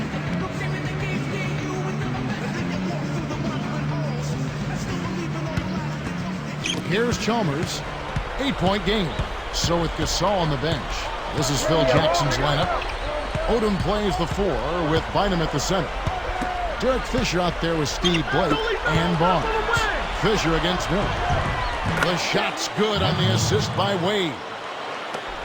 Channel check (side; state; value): both; identical; correlation 1.00